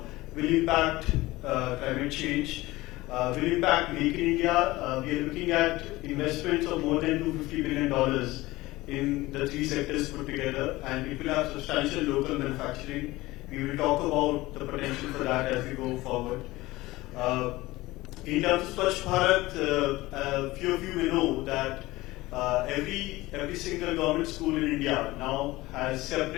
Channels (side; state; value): right; quieter; 19.1 dB